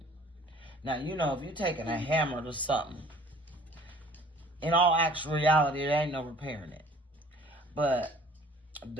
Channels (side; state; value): both; normal; correlation 0.51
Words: if you're taking a hammer to something, in all actual reality, there ain't no repairing it. But